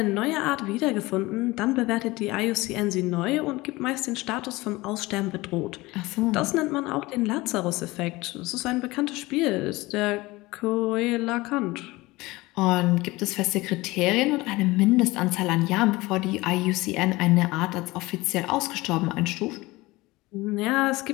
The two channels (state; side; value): quieter; right; 20.9 dB